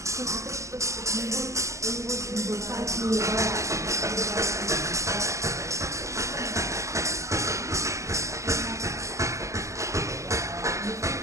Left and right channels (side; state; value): left; late; 0.15 ms